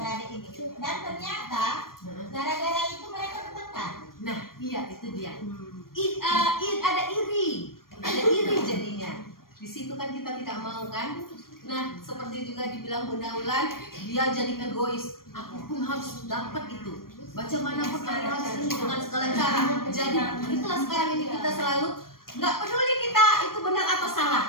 ini. Dan ternyata gara-gara itu mereka bertengkar. Nah, iya itu dia. Ada iri jadinya. Di situ kan kita tidak mau kan. Nah, seperti juga dibilang Bunda Ulan, dia jadi egois. Aku pun harus dapat itu. Bagaimanapun harus dengan segala cara. Jadi itulah sekarang ini kita selalu nggak peduli kita itu benar atau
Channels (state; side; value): late; right; 0.92 ms